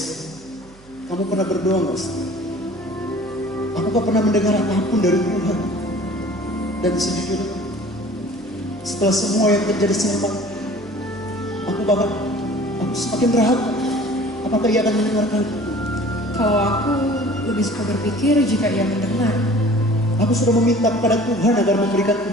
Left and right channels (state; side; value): noise; right; hum, 25 dB below the sound